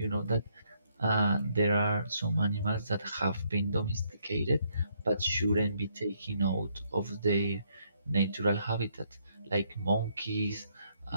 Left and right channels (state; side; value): inverted; both; correlation -0.72